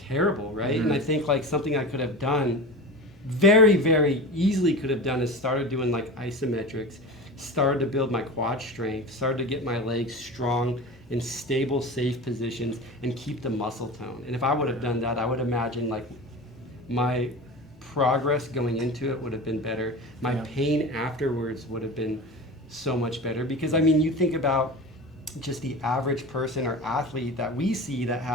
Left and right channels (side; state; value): both; normal; correlation 0.31